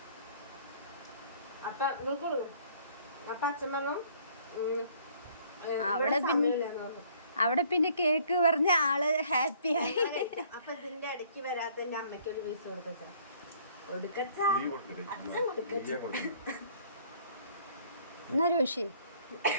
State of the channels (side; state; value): both; inverted; correlation -0.58